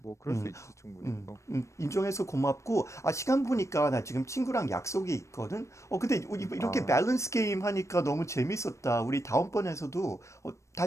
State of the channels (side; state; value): right; late; 0.14 ms